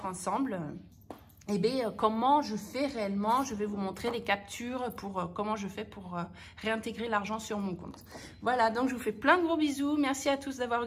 ensemble comment je fais réellement. Je vais vous montrer les captures pour comment je fais pour réintégrer l'argent sur mon compte. Voilà, donc je vous fais plein de gros bisous. Merci à tous d'avoir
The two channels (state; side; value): identical; both; correlation 1.00